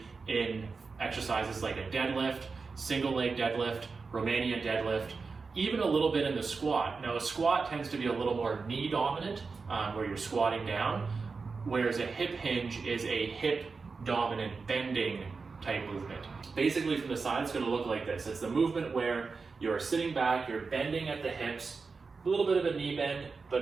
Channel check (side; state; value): left; quieter; 4.6 dB